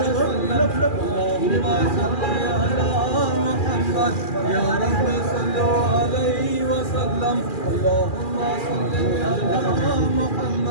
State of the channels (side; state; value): right; late; 2.4 ms